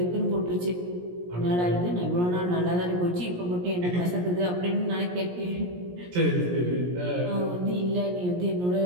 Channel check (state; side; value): late; left; 17 ms